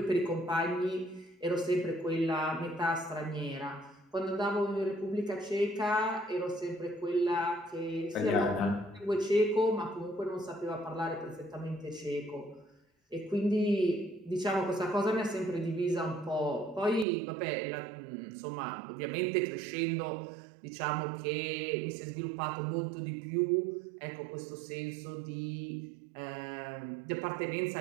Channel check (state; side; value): drops out; left; at 17.1 s